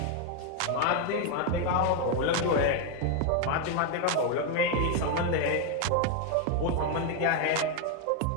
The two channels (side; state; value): both; different; correlation 0.01